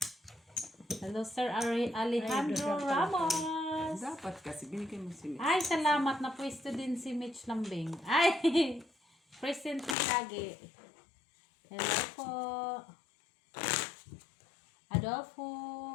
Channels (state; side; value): drops out; right; at 10.0 s